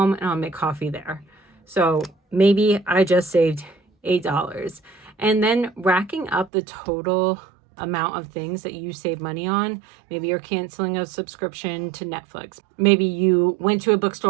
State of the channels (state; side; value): drops out; left; at 6.5 s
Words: and I'll make coffee there. So maybe I just saved $8. And then racking up the total amount of things that you save money on. Maybe you're canceling a subscription to Netflix. Maybe you went to a